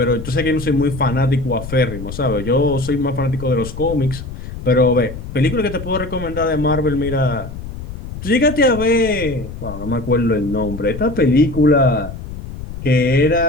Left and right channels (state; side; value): noise; left; rumble, 10 dB below the sound